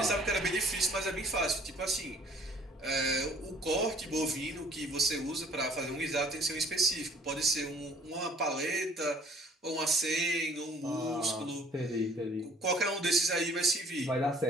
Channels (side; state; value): both; normal; correlation 0.55